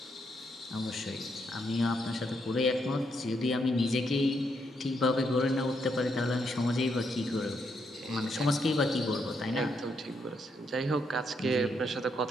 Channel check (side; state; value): both; normal; correlation 0.77